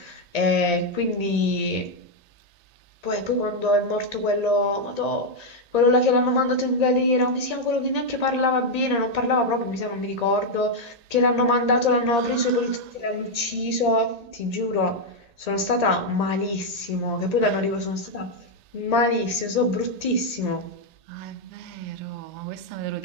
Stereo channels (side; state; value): left; late; 1.8 ms